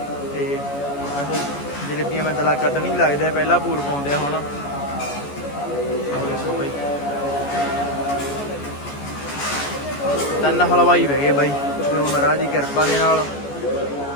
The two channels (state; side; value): late; right; 14 ms